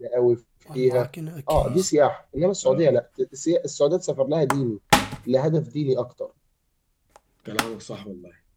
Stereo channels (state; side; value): identical; both; correlation 1.00